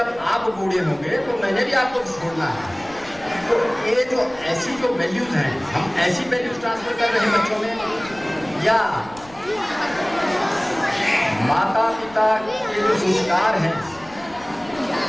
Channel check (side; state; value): left; noise; rumble, 23 dB below the sound